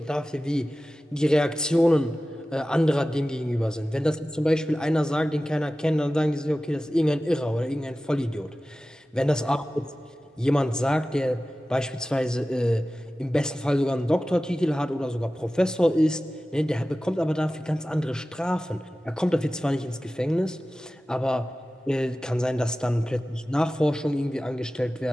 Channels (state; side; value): normal; both; correlation 0.95